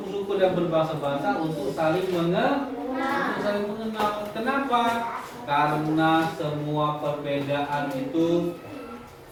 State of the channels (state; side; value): identical; both; correlation 1.00